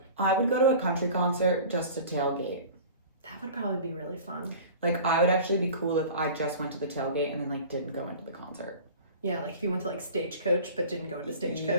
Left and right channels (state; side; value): inverted; both; correlation -0.40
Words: I would go to a country concert just to tailgate. That would probably be really fun. Like I would actually be cool if I just went to the tailgate and then like didn't go into the concert. Yeah, like if you went to like Stagecoach but didn't go into